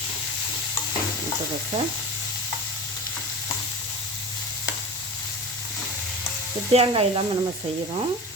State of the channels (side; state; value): both; normal; correlation 0.32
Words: முட்டைக்கோசை தேங்காய் இல்லாமல் நம்ம செய்கிறோம்.